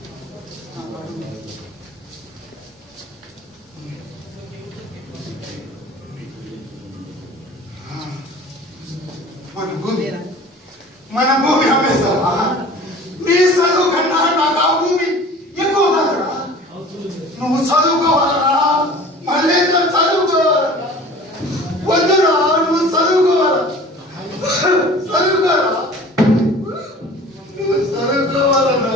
మన భూమి అమ్మేస్తావా? నీ చదువు కన్నా నాకు ఆ భూమి ఎక్కువ కాదురా. నువ్వు చదువుకోవాలరా? మళ్ళీ చదువుకోవాలా? వద్దురా, నువ్వు చదువుకోవాలా? చదువుకోరా, నువ్వు చదువుకోవాలరా?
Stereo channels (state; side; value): normal; both; correlation 0.43